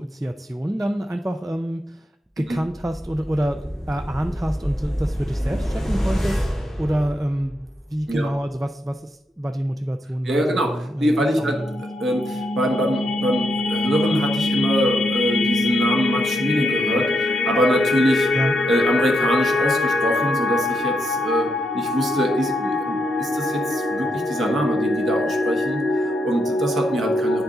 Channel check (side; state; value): both; normal; correlation 0.81